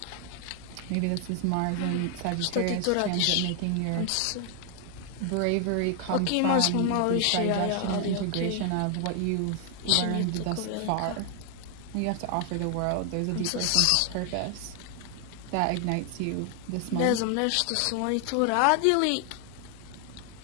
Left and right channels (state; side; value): different; both; correlation 0.00